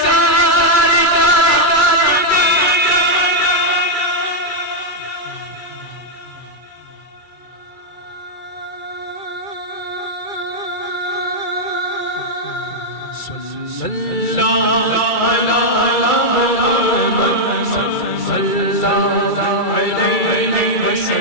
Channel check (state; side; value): late; right; 2.3 ms